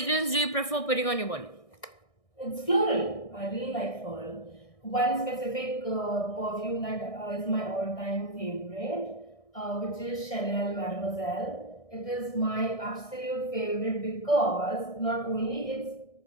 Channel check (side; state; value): right; late; 1.6 ms